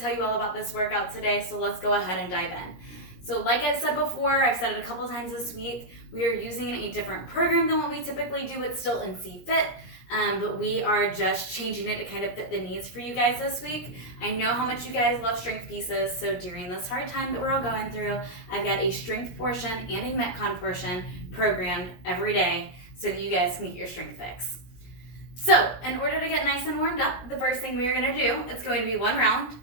tell you all about this workout today, so let's go ahead and dive in. So like I've said before, I've said it a couple times this week, we are using a different program than what we typically do. It's still NC Fit, but we are just changing it to kind of fit the needs for you guys this week. I know how much you guys love strength pieces, so during this hard time that we're all going through, I've got a strength portion and a Metcon portion programmed every day so that you guys can get your strength fix. So in order to get nice and warmed up, the first thing we're gonna do, it's going to be one round.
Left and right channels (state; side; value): late; right; 17 ms